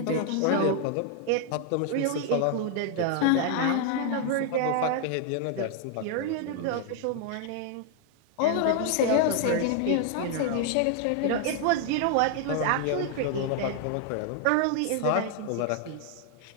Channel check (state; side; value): different; both; correlation 0.00